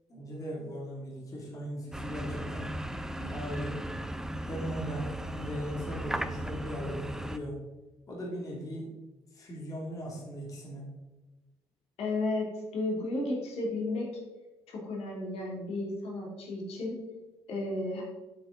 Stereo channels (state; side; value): normal; both; correlation 0.73